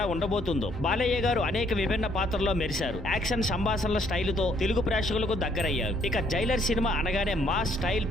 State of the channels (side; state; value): both; normal; correlation 0.66